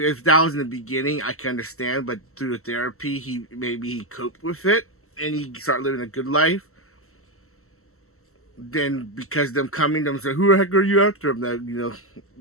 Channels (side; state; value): right; late; 0.63 ms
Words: that was in the beginning, I can understand. But through the therapy, he coped with it and he started living a good life. Then because them coming, them say, "Who the heck are you after him?" That